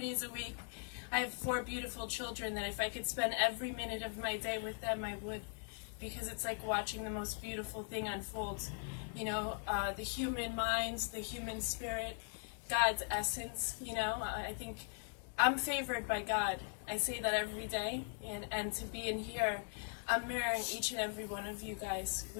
a week. I have 4 beautiful children that if I could spend every minute of my day with them, I would. Because it's like watching the most beautiful thing unfold. You know, the human minds, the human spirit, God's essence, you know. I think I'm favored by God. I say that every day. And to be in here, I'm mirroring each and every one of you guys.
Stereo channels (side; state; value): right; silent; 51 dB below the other